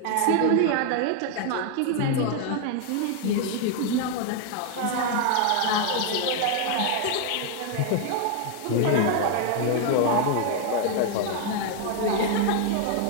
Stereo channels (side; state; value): both; different; correlation 0.00